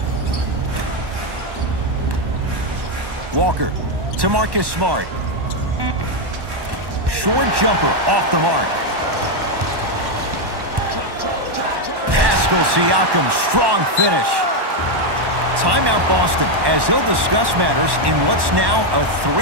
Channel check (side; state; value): left; late; 1.1 ms